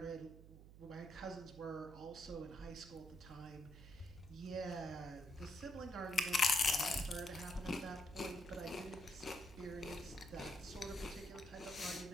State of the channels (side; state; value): right; noise; hum, 16 dB below the sound